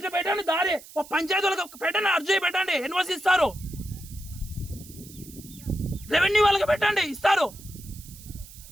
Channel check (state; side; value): noise; right; hiss, 18 dB below the sound